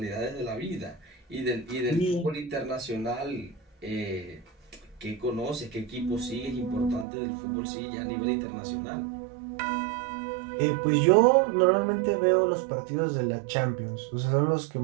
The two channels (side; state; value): left; drops out; at 7.1 s